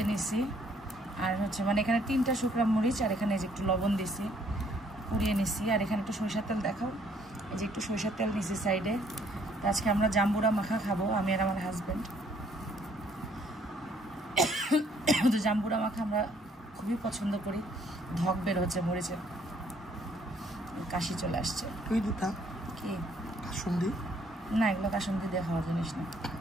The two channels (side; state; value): both; normal; correlation 0.65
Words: নিছি। আর হচ্ছে মানে এখানে 3টা শুকনো মরিচ আর এখানে এই যে একটু লবণ দিছি, পুড়িয়ে নিছি। আর এখানে একটু সরিষার তেল দেখাও, এই যে একটু সরিষার তেল দিছি সাইডে। তো আজকে আমরা জাম্বুরা মাখা খাবো, আমি আর আমার হাজব্যান্ড। তো জাম্বুরা মাখা আমরা খুবই পছন্দ করি। ধক বের হচ্ছে মরিচের, কাশি চলে আসছে। কি কাসুন্দি? না, এগুলো কাসুন্দি দিয়ে খাওয়ার জিনিস না।